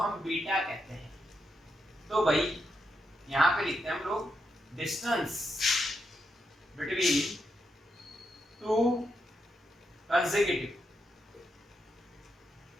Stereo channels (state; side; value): normal; both; correlation 0.82